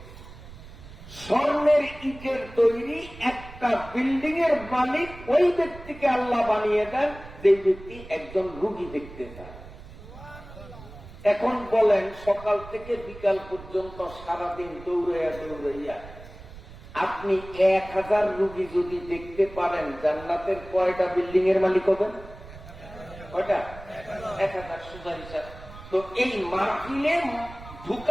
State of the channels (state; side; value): noise; right; rumble, 16 dB below the sound